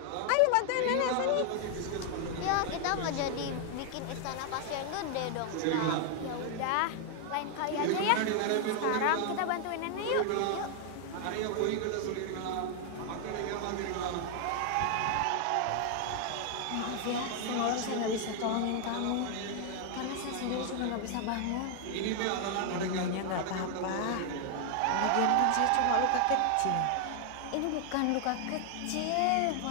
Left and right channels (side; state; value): both; different; correlation 0.00